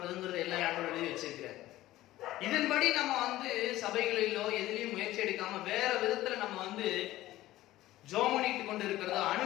எல்லா இடங்களும் எழுதி வச்சிருக்கிறார். இதன்படி நம்ம சபைகளிலோ எதிலையும் முயற்சி எடுக்காம வேற விதத்துல நம்ம ஜோம் பண்ணிட்டு கொண்டு இருக்கிறதோ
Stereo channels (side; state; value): right; quieter; 15.8 dB